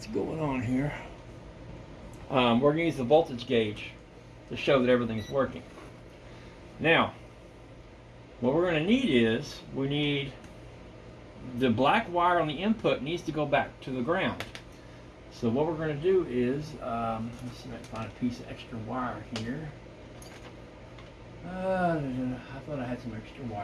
going on here. We're going to use the voltage gauge to show that everything's working. Now, what we're going to need is, we need the black wire on the input needs to go back to the ground. So what we're going to do is, let's see if I can find a piece of extra wire here. I thought I had some extra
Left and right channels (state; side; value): identical; both; correlation 1.00